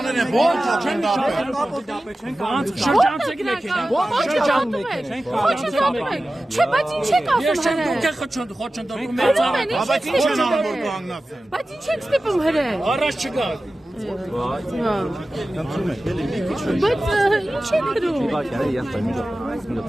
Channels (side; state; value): both; normal; correlation 0.95